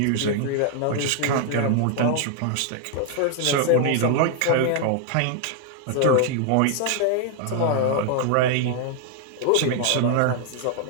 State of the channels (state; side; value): different; both; correlation 0.00